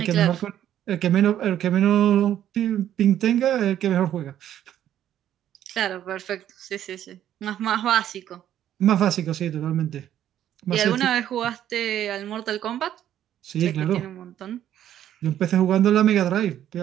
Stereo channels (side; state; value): left; quieter; 11.2 dB